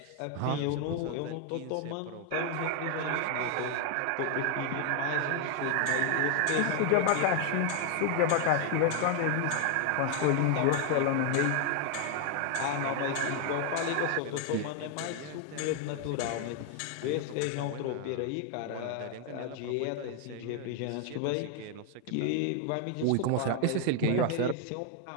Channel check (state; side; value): different; both; correlation 0.00